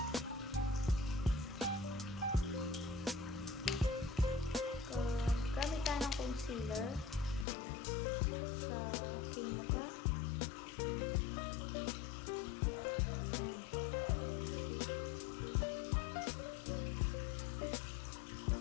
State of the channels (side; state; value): right; drops out; at 7.5 s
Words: Gamit tayo ng concealer sa aking mukha.